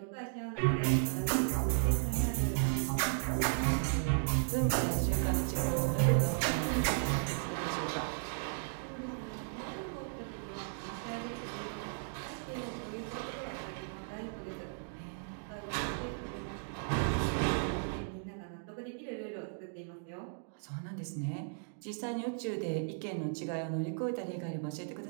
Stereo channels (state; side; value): silent; left; digital silence